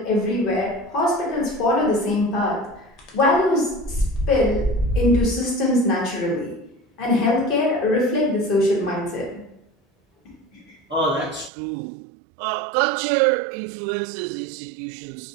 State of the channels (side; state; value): left; drops out; at 11.5 s